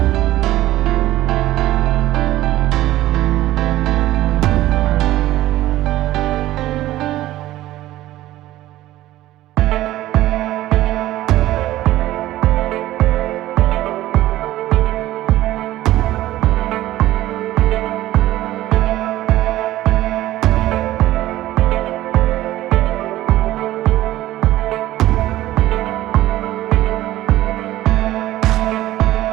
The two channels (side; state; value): left; quieter; 15.2 dB